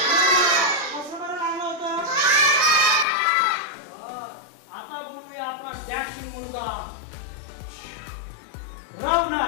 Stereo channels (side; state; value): right; drops out; at 3.1 s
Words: कसं बरं लागलं होतं? आता बोलूया आपला डॅशिंग मुलगा